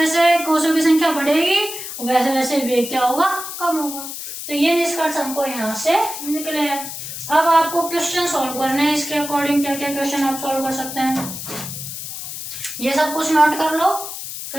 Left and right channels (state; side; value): noise; left; hiss, 8 dB below the sound